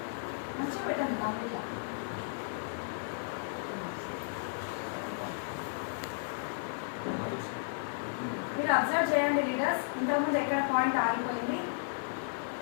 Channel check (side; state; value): right; silent; digital silence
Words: మంచిగా పెట్టండి కంప్లీట్గా. మీరు అబ్జర్వ్ చేయండి లీడర్స్, ఇంతకుముందు ఎక్కడ పాయింట్ ఆగిపోయింది,